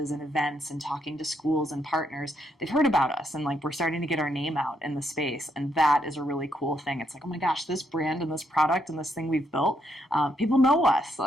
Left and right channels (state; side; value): normal; both; correlation 0.76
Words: and events and talking to schools and partners, they've heard about us and like we're starting to get our name out in the space. And that is a really cool thing. It's like, oh my gosh, this brand and this product and this thing we've built, people know us,